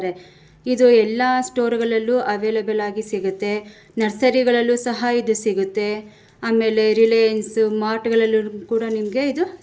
ಇದು ಎಲ್ಲ ಸ್ಟೋರ್ಗಳಲ್ಲೂ ಅವೈಲೇಬಲ್ ಆಗಿ ಸಿಗುತ್ತೆ. ನರ್ಸರಿಗಳಲ್ಲೂ ಸಹ ಇದು ಸಿಗುತ್ತೆ. ಆಮೇಲೆ ರಿಲಯನ್ಸ್ ಮಾರ್ಟ್ಗಳಲ್ಲೂ ಕೂಡ ನಿಮಗೆ ಇದು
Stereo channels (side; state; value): both; identical; correlation 1.00